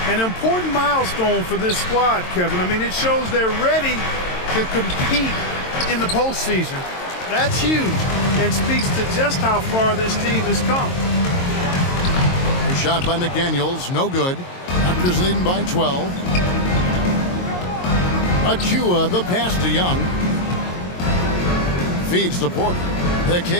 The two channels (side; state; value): right; late; 22 ms